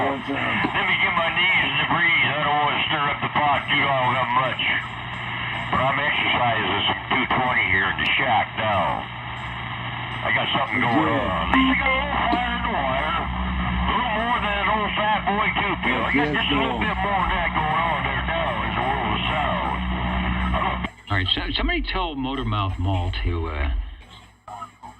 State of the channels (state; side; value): identical; both; correlation 1.00